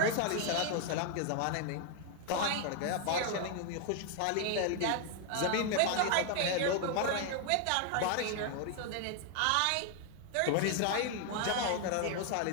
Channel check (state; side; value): different; both; correlation 0.00